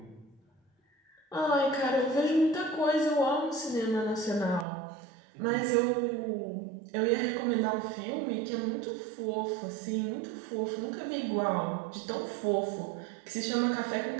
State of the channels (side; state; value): left; drops out; at 4.7 s